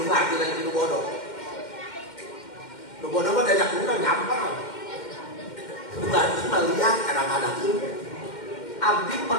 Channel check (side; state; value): right; late; 2.1 ms